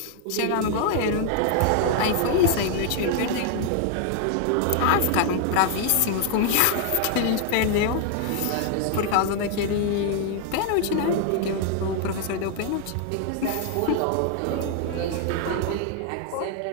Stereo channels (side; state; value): both; different; correlation 0.00